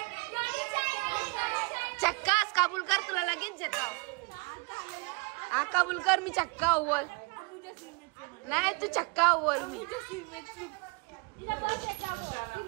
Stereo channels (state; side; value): quieter; left; 29.0 dB